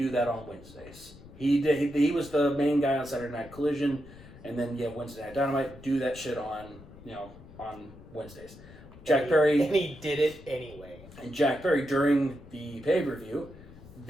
that on Wednesdays." He was the main guy on Saturday Night Collision, and then Wednesday Night Dynamite. Do that shit on Wednesdays. Jack Perry, and he did it anyway. And Jack Perry, during the pay-per-view,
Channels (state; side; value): noise; left; rumble, 19 dB below the sound